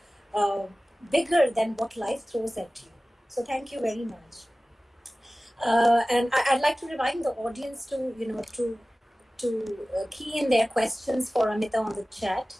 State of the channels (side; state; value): both; normal; correlation 0.97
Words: uh, bigger than what life throws at you. So thank you very much. And I'd like to remind the audience to key in their questions for Amita on the chat.